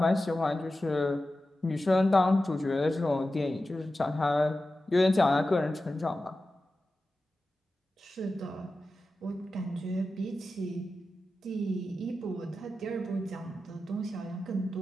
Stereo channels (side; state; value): both; normal; correlation 0.93